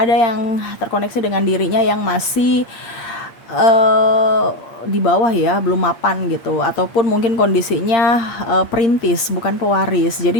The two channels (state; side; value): late; right; 8.5 ms